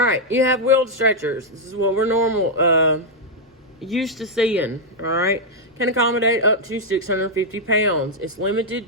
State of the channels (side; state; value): both; normal; correlation -0.03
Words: you have wheeled stretchers. This is what we're used to seeing, all right? Can accommodate up to 650 pounds. It's limited